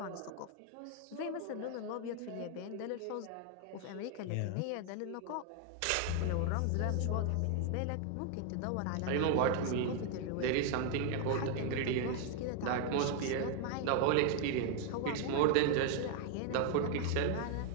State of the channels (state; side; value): different; both; correlation 0.00